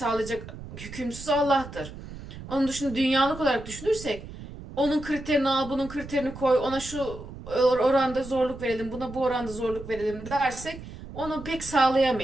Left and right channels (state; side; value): noise; right; rumble, 13 dB below the sound